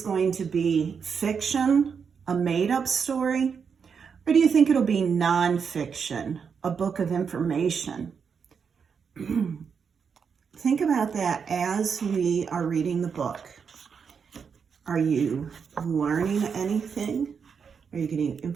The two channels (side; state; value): left; quieter; 6.3 dB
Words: going to be fiction, a made-up story? Or do you think it'll be nonfiction, a book of information? Think about that as we are reading the book. Are you learning anything? Are you getting